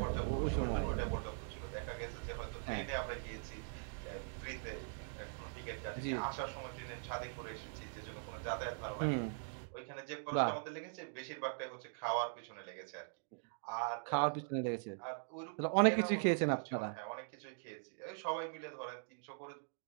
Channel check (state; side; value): silent; left; digital silence